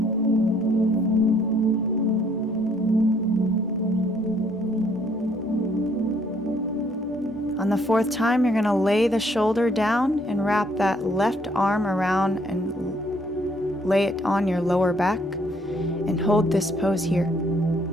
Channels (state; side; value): normal; both; correlation 0.65